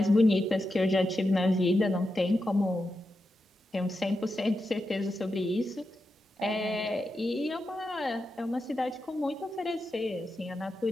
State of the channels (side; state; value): both; normal; correlation 0.88